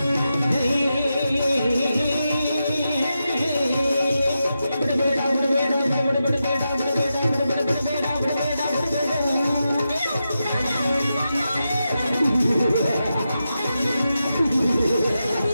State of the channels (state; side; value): inverted; both; correlation -0.89